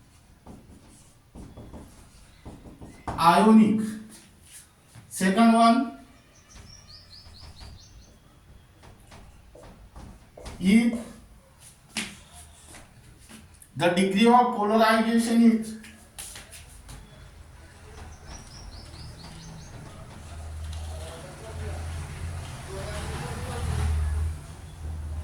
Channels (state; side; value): identical; both; correlation 1.00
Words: ionic. Second one, if the degree of polarization is